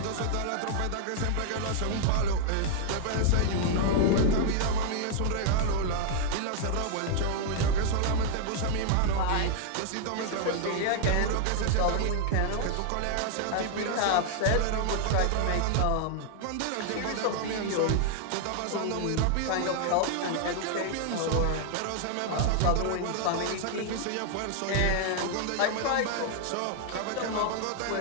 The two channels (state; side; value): different; both; correlation 0.00